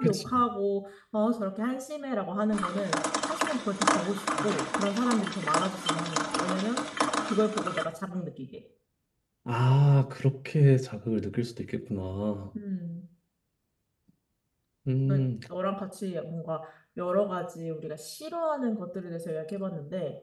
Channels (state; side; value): identical; both; correlation 1.00